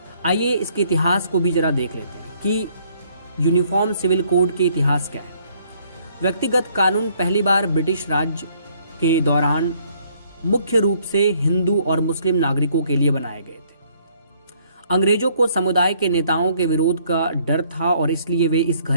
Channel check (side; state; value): both; inverted; correlation -0.65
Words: आइए इसके इतिहास को भी जरा देख लेते हैं कि यूनिफॉर्म सिविल कोड के इतिहास क्या है। व्यक्तिगत कानून पहली बार ब्रिटिश राज के दौरान मुख्य रूप से हिंदू और मुस्लिम नागरिकों के लिए बनाए गए थे। अंग्रेजों को समुदाय के नेताओं के विरोध का डर था और इसलिए वे इस